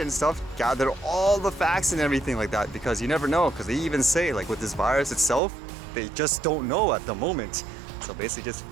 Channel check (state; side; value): drops out; left; at 5.4 s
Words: and stuff, gather all the facts and everything like that, because you never know, because they even say, like with this virus itself, they just don't know at the moment. So basically just